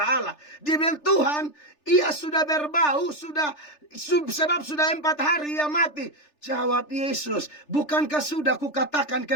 Allah. Dia bilang, Tuhan, ia sudah berbau, sebab sudah 4 hari ia mati. Jawab Yesus, bukankah sudah kukatakan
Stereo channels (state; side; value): late; right; 3.4 ms